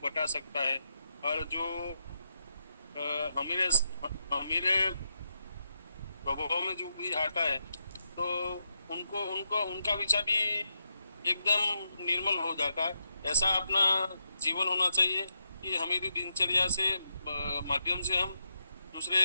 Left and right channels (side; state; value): both; inverted; correlation -0.82